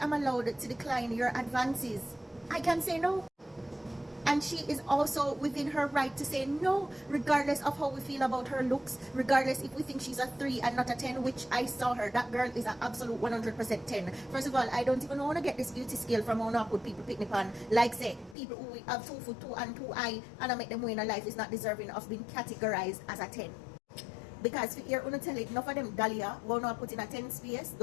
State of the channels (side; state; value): right; drops out; at 18.4 s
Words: allowed to decline your advances. I can say no. And she is also within her right to say no, regardless of how we feel about her looks, regardless if we think she's a 3 and not a 10, which I saw her. That girl is an absolute 100% 10. First of all, I don't even want to get this beauty scale from how I put people picnic on. Like say, people who have 2 foot 2 and 2 eye, and I make them win a life is not deserving of being categorized as a 10. Because if you're going to tell it, enough of them dahlia, won't know put in a 10 space,